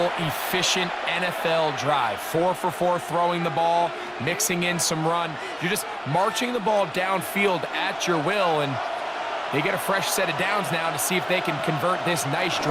efficient NFL drive. 4 for 4 throwing the ball, mixing in some run. You're just marching the ball downfield at your will, and they get a fresh set of downs now to see if they can convert this nice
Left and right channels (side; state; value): both; identical; correlation 1.00